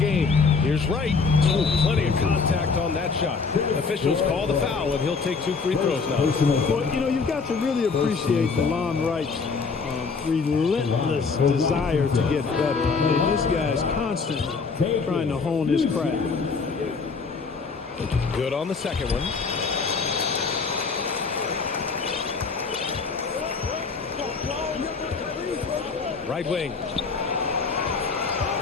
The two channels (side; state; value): right; quieter; 4.8 dB